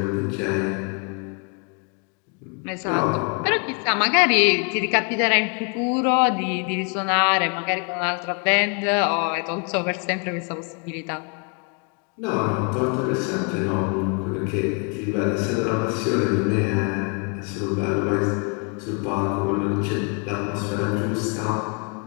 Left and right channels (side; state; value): right; quieter; 37.2 dB